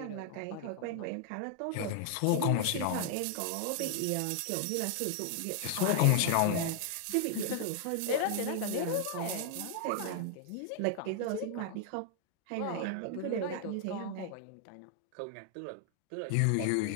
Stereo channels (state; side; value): different; both; correlation 0.00